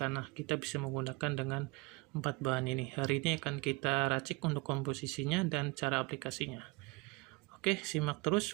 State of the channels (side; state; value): left; quieter; 25.3 dB